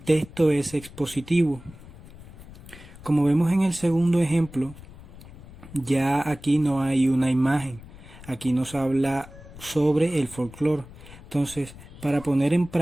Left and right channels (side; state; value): left; noise; rumble, 18 dB below the sound